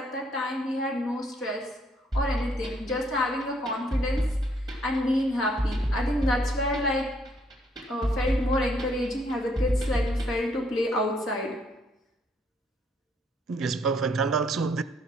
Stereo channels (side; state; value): both; normal; correlation 0.69